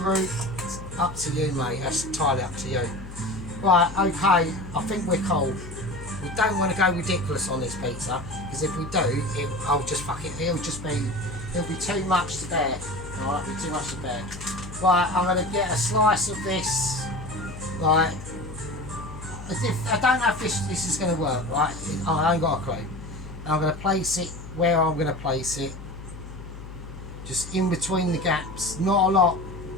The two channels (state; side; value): noise; left; hum, 12 dB below the sound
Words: up to you, mate. That's entirely up to you. Right, okay, I think we're cool. We don't want to go ridiculous on this pizza, because if we do, it'll be too much to bear. Alright, it'll be too much to bear. Right, I'm going to get a slice of this, like, I don't know if this is going to work, right? I ain't got a clue. I'm going to place it where I'm going to place it. Just in between the gaps, not a lot.